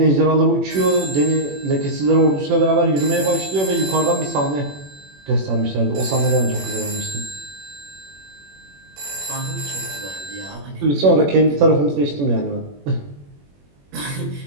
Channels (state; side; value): late; left; 21 ms